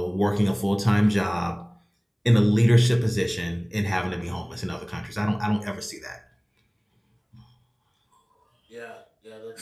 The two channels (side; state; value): both; identical; correlation 1.00